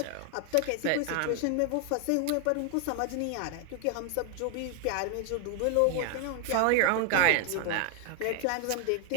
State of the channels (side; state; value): both; different; correlation 0.01